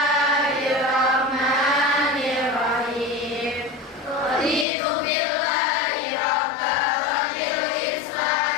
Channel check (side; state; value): right; drops out; at 4.7 s